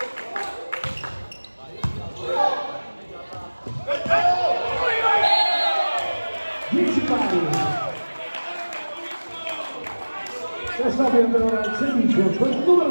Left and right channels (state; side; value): inverted; both; correlation -1.00